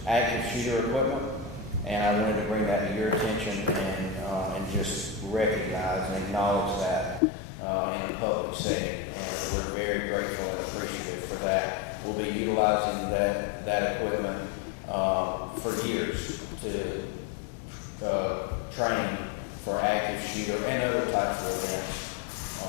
active shooter equipment. And I wanted to bring that to your attention and just recognize and acknowledge that in a public setting. And we're very grateful and appreciative for that. We'll be utilizing that equipment for years to train for active shooter and other types of events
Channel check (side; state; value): right; drops out; at 7.2 s